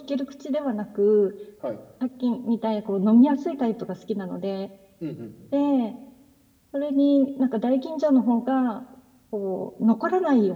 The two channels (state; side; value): identical; both; correlation 1.00